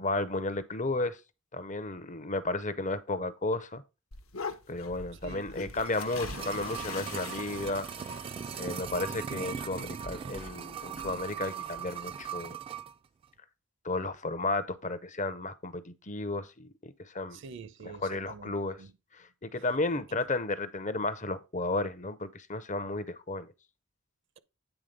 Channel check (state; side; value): normal; both; correlation 0.09